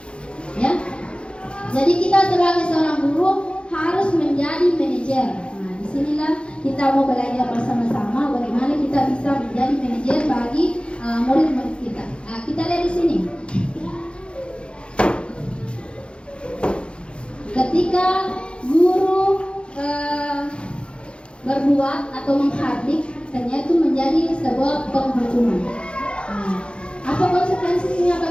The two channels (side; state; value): right; late; 0.056 ms